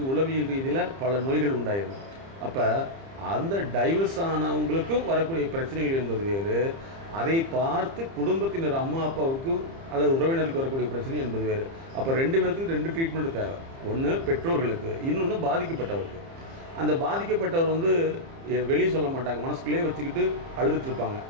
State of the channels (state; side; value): late; left; 30 ms